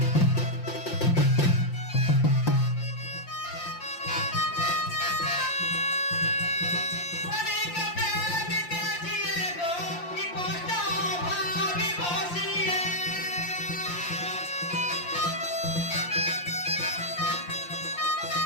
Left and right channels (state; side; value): late; right; 5.7 ms